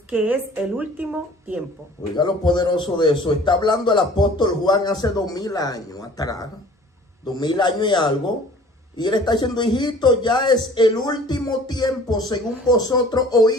que es el último tiempo. Oiga lo poderoso de eso. Está hablando el apóstol Juan hace 2000 años atrás, 2000 años y algo. Y él está diciendo, hijito, ya es el último tiempo, según vosotros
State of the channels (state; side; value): normal; both; correlation 0.49